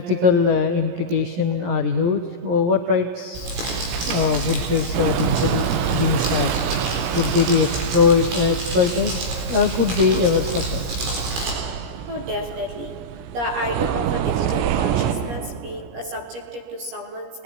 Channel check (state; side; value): late; left; 17 ms